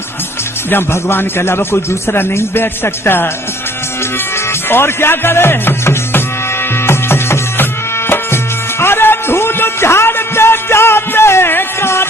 जब भगवान के अलावा कोई दूसरा नहीं बैठ सकता और क्या करे। अरे धूल झाड़ते जाते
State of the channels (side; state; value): both; normal; correlation 0.58